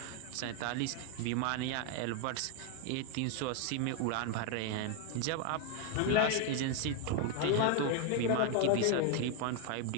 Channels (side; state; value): both; different; correlation 0.01